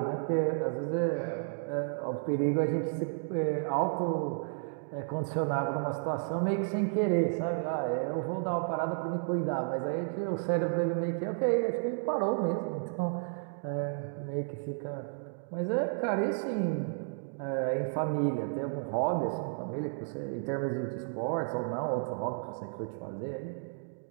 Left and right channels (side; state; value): left; silent; digital silence